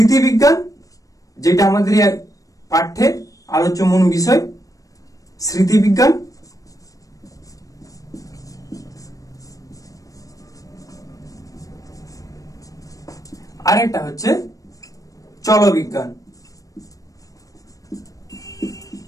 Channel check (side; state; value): right; late; 0.16 ms